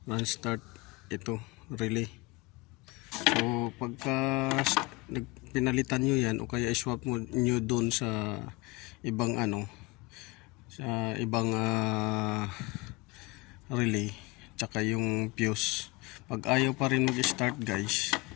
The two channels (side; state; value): right; quieter; 24.0 dB